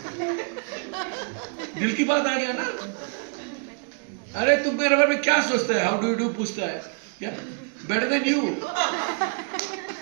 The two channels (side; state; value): left; quieter; 39.2 dB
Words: दिल की बात आ गया ना? अरे तुम मेरे बारे में क्या सोचता है? हाउ डू यू डू पूछता है क्या? Better than you.